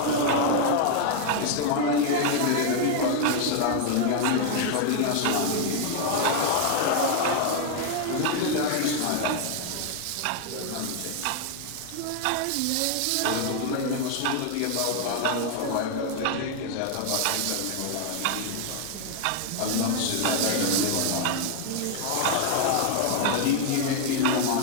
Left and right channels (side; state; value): both; different; correlation 0.00